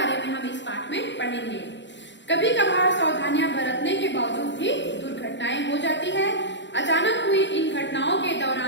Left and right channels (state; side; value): late; right; 0.53 ms